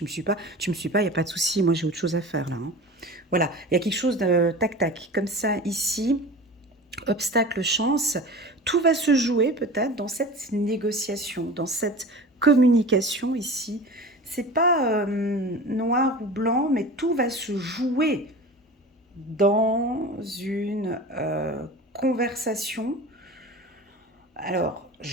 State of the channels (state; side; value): normal; both; correlation 0.35